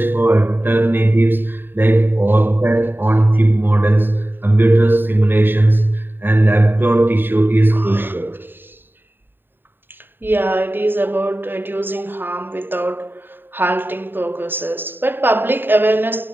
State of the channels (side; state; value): left; late; 0.096 ms